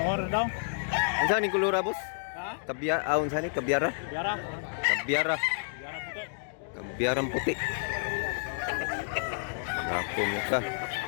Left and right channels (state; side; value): silent; right; digital silence